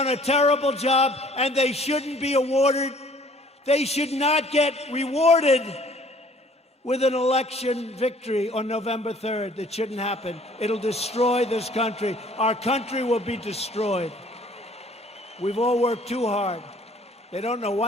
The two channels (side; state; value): both; normal; correlation 0.56